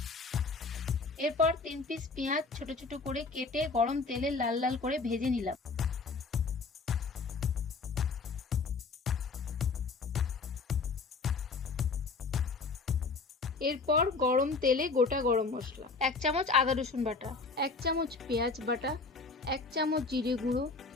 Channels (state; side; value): quieter; right; 4.2 dB